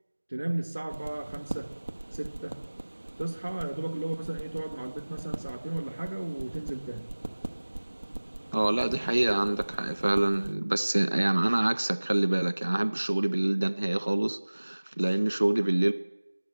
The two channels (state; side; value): inverted; both; correlation -1.00